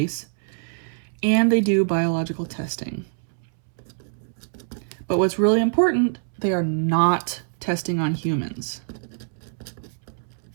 and they do biological testing. But what's really important, they are not testing on humans.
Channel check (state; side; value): silent; left; 62 dB below the other